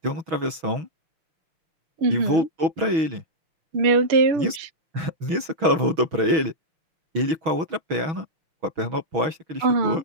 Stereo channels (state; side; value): late; left; 6.2 ms